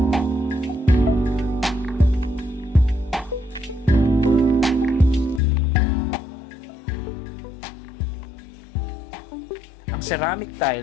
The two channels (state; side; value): drops out; right; at 5.4 s